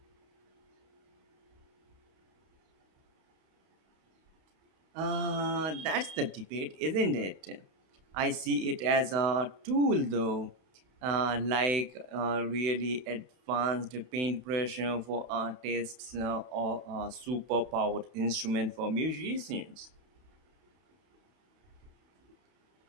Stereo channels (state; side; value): late; left; 31 ms